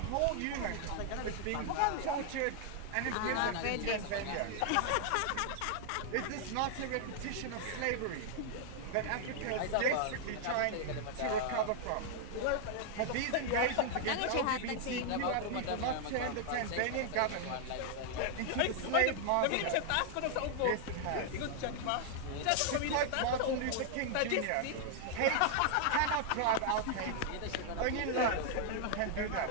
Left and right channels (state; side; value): different; both; correlation 0.00